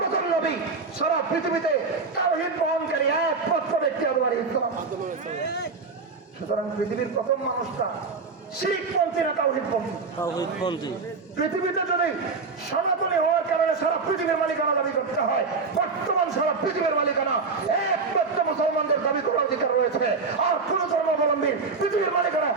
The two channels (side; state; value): left; quieter; 4.4 dB